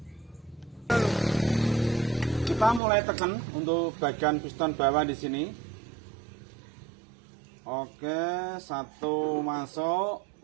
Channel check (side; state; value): left; drops out; at 2.8 s